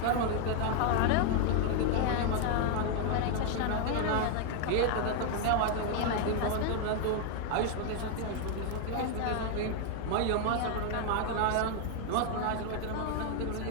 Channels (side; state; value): both; different; correlation 0.00